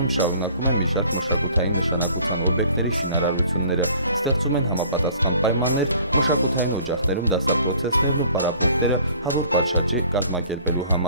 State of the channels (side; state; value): both; inverted; correlation -0.53